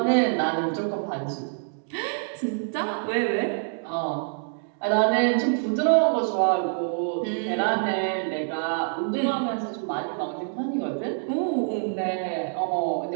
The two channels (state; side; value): silent; left; digital silence